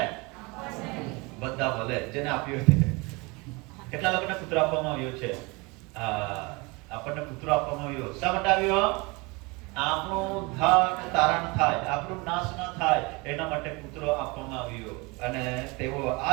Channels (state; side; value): quieter; left; 26.6 dB